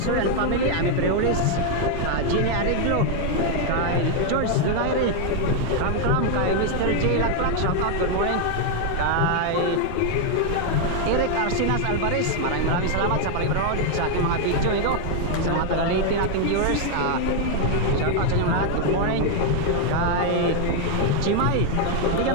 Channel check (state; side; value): different; both; correlation 0.01